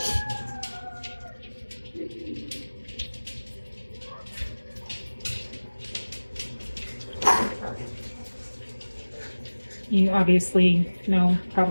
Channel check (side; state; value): both; inverted; correlation -1.00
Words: You obviously know